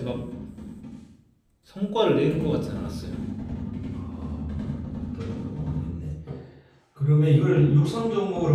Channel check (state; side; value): identical; both; correlation 1.00